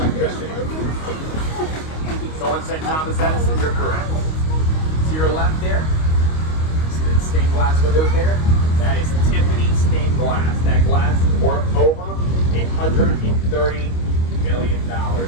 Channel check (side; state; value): right; late; 25 ms